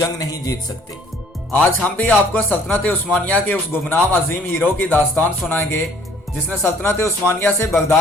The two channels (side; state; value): both; normal; correlation 0.58